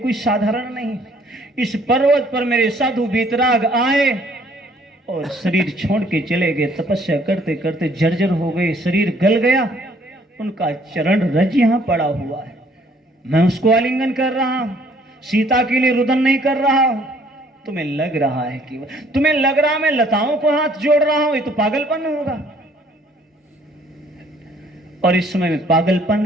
साधारण नहीं। इस पर्वत पर मेरे साधु वीतराग आए और शरीर छोड़ के चले गए, तपस्या करते करते जर्जर हो गए, शरीर गल गया, उनका चरण रज यहां पड़ा हुआ है, मैं उसको आलिंगन कर रहा हूं, सीता के लिए रुदन नहीं कर रहा हूं। तुम्हें लग रहा है कि तुम्हें लग रहा मैं लताओं को हाथ जोड़ रहा हूं, ये तो पागलपन होगा। और इस समय मैं पागलपन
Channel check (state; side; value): normal; both; correlation 0.61